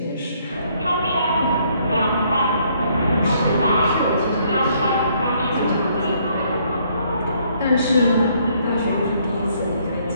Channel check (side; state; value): both; inverted; correlation -0.67